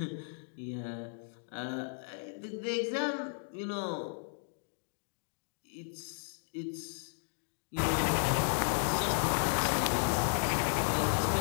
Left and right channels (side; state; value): right; silent; digital silence